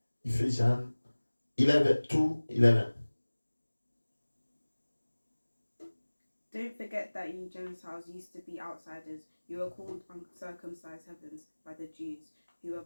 11. Don't forget that you Gentiles used to be outsiders. You were called uncircumcised heathens by the Jews, who were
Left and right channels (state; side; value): inverted; both; correlation -1.00